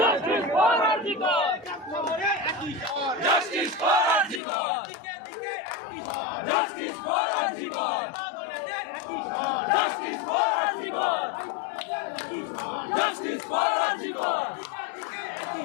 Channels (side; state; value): right; drops out; at 4.4 s